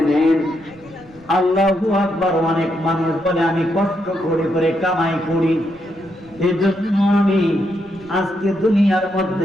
নেন। আল্লাহু আকবার। অনেক মানুষ বলে আমি কষ্ট করে কামাই করি, এজন্য আমি আজকে দুনিয়ার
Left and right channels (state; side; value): noise; right; rumble, 25 dB below the sound